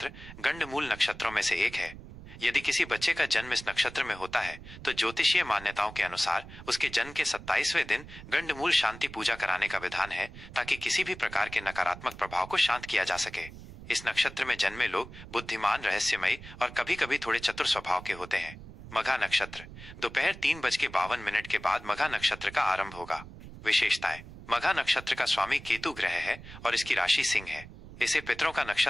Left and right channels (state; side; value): noise; right; rumble, 15 dB below the sound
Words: गंडमूल नक्षत्रों में से एक है। यदि किसी बच्चे का जन्म इस नक्षत्र में होता है तो ज्योतिषीय मान्यताओं के अनुसार उसके जन्म के 27वें दिन गंडमूल शांति पूजा कराने का विधान है, ताकि किसी भी प्रकार के नकारात्मक प्रभाव को शांत किया जा सके। इस नक्षत्र में जन्मे लोग बुद्धिमान, रहस्यमयी और कभी कभी थोड़े चतुर स्वभाव के होते हैं। मघा नक्षत्र। दोपहर 3:52 के बाद मघा नक्षत्र का आरंभ होगा। विशेषताएं। मघा नक्षत्र का स्वामी केतु ग्रह है और इसकी राशि सिंह है। इसे पितरों का